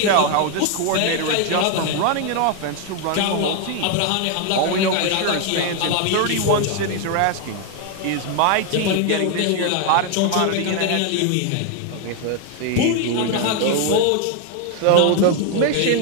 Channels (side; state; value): both; different; correlation 0.01